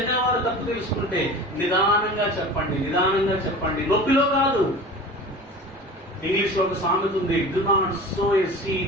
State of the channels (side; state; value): both; normal; correlation 0.37